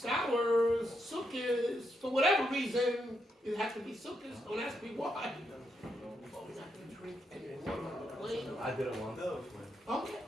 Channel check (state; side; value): normal; both; correlation 0.80